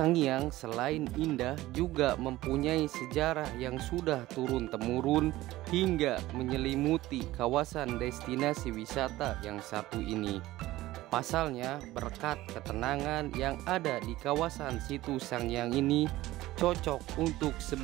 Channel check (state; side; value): quieter; left; 16.9 dB